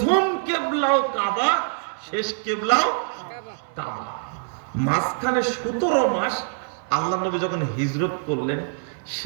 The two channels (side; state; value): left; silent; 58 dB below the other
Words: কেবলাও কাবা, শেষ কেবলাও কাবা। মাঝখানে 17 মাস আল্লাহ নবী যখন হিজরত করলেন,